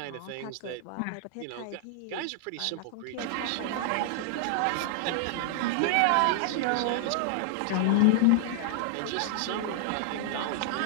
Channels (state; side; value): different; both; correlation -0.01